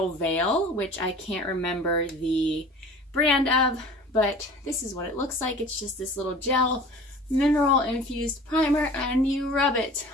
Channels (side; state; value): both; normal; correlation 0.43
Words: Veil, which I can't remember the brand of, but this is what it looks like. It's just this little gel mineral infused primer, and you rub it